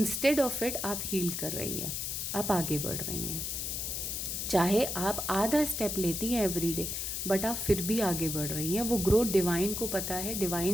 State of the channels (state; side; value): noise; left; hiss, 3 dB below the sound